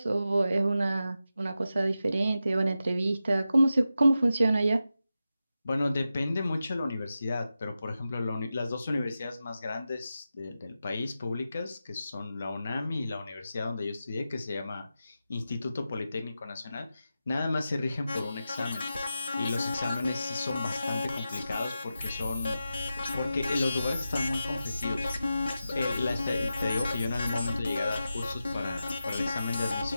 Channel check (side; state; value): both; inverted; correlation -0.91